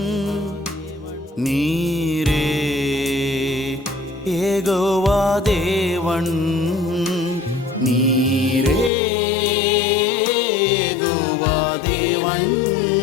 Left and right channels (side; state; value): right; drops out; at 8.9 s